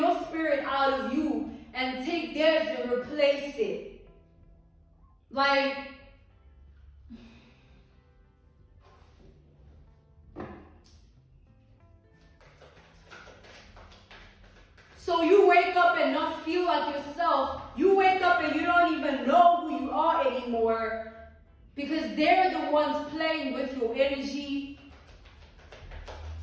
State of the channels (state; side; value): identical; both; correlation 1.00